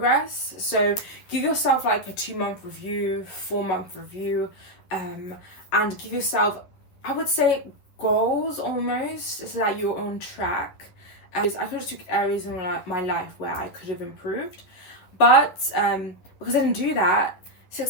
So give yourself like a 2-month review, 4-month review, and give yourself, I would say, goals almost, so that you're on track. I could have took areas in my life where I could have improved, but because I didn't do that,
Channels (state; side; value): late; right; 11 ms